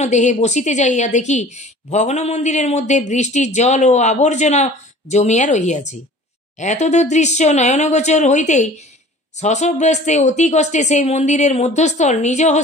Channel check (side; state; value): both; normal; correlation 0.46